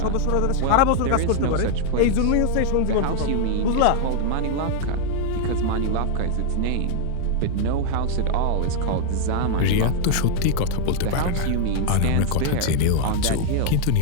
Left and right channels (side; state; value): both; different; correlation 0.00